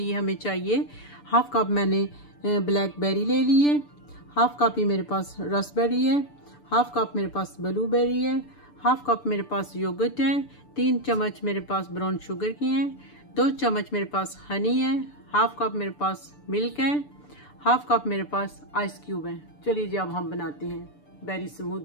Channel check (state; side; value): late; right; 6.8 ms